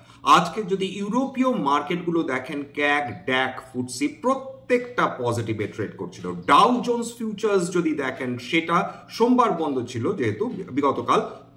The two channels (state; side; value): identical; both; correlation 1.00